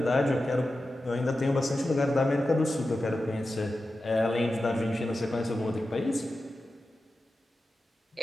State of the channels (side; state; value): both; normal; correlation 0.92